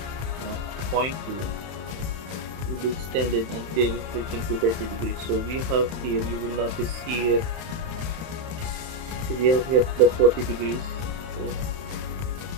0.2 will be extended until reaching to 30 degrees. So we have here, you will notice here, so we have here the 40 degrees. Okay.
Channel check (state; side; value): late; left; 31 ms